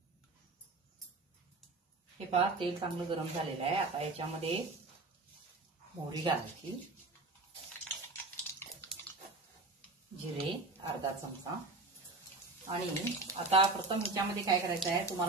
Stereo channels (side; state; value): left; quieter; 3.4 dB